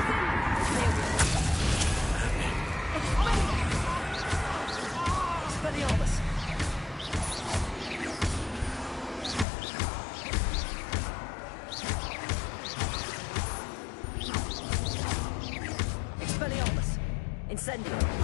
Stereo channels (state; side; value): drops out; right; at 9.5 s